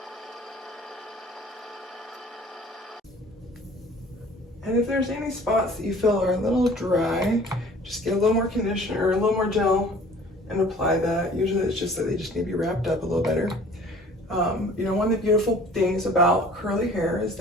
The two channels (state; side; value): normal; both; correlation 0.50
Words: And if there's any spots that you feel are a little dry, just get a little more conditioner or a little more gel and apply that. Usually it's just that they just need to be wrapped up a little better. You know, one of the beautiful things about curly hair is